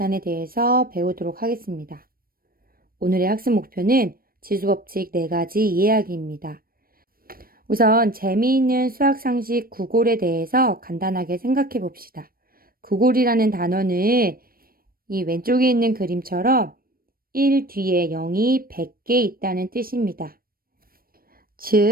대해서 배우도록 하겠습니다. 오늘의 학습 목표는 지수법칙 4가지 이해하기입니다. 우선 재미있는 수학 상식 구골에 대해서 간단하게 생각해 봅시다. 구골이라는 단어는 이 왼쪽에 있는 그림처럼 1 뒤에 0이 100개 있다는 뜻입니다.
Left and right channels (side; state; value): left; late; 0.43 ms